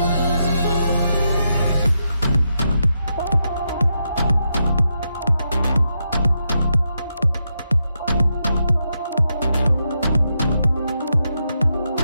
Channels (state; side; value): inverted; both; correlation -0.83